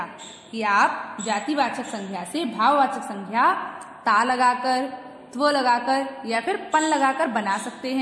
कि आप जातिवाचक संज्ञा से भाववाचक संज्ञा ता लगाकर, त्व लगाकर या फिर पन लगाकर बना सकते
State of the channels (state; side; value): identical; both; correlation 1.00